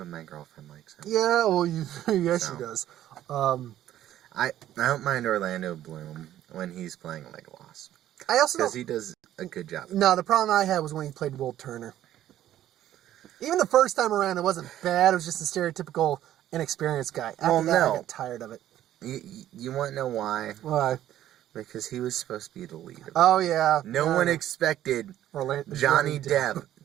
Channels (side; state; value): left; quieter; 12.4 dB